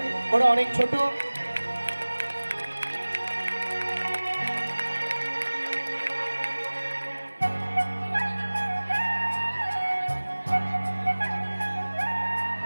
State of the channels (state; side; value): inverted; both; correlation -1.00